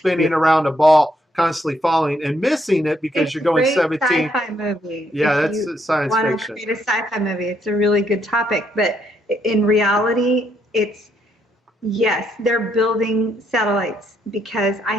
around a ball, constantly falling and missing it because you're going 17. Sci-fi movie. Yeah, that's science fiction. Want to create a sci-fi movie? It's a really good topic, but in reality, yes, they're building satellites because I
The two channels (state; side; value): normal; both; correlation 0.74